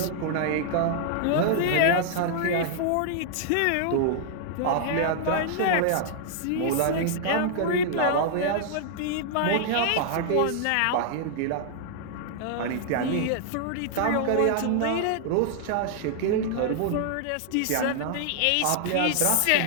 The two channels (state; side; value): different; both; correlation -0.01